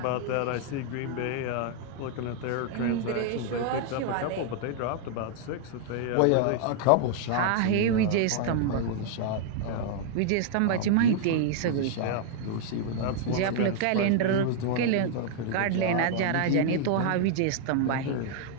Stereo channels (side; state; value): both; different; correlation 0.00